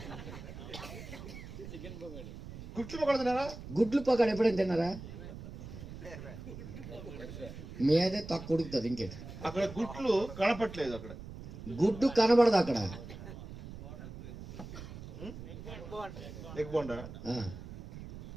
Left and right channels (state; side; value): noise; right; rumble, 12 dB below the sound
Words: చికెన్ పకోడీ. గుట్లు పకోడా తిన్నారా? గుడ్లు పొకాడు ఎప్పుడైనా తిన్నారా? మీదే తక్కువ ఉడుకుతుంది. ఇంకేంటి? అక్కడ గుట్లు కనపట్లేదు, అక్కడ గుడ్డు కనబడదు అక్కడ. ఎగ్ బోండా ఆ,